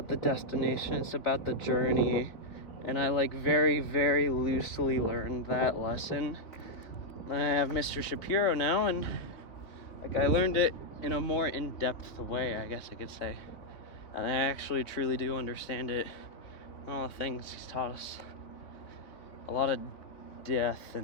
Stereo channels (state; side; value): late; right; 3.6 ms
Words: the destination, it's about the journey. And I like very, very loosely learned that lesson. And I have Mr. Shapiro now, and like I learned it in a more in-depth way, I guess I could say. And I actually truly do understand it. All the things he's taught us. A lot of death